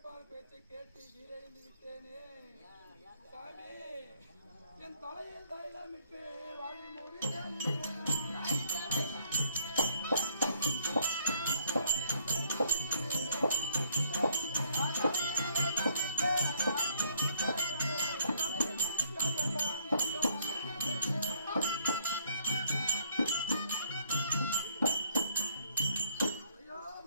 பேச்சை கேட்டு வீரழிந்து விட்டேனே சாமி. என் தலையில் தைலமிட்டு வாழி மூடி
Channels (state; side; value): inverted; both; correlation -0.66